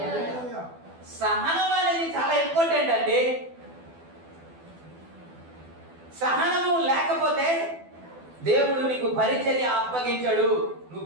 సహనం అనేది చాలా ఇంపార్టెంట్ అండి. సహనము లేకపోతే దేవుడు నీకు పరిచర్య అప్పగించడు, నువ్వు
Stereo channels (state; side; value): late; left; 12 ms